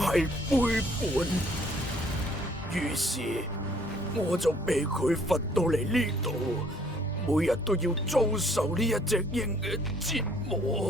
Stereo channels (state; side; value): normal; both; correlation 0.61